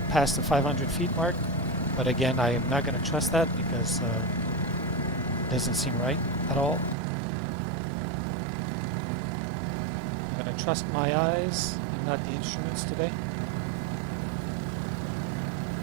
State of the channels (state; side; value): drops out; left; at 7.0 s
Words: past the 500 feet mark. But again, I am not going to trust that because it doesn't seem right at all. I'm going to trust my eyes and not the instruments today.